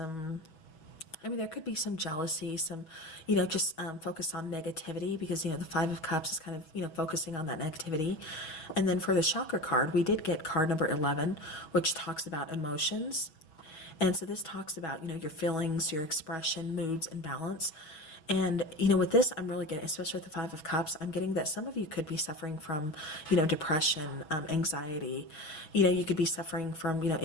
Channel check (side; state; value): right; late; 6.1 ms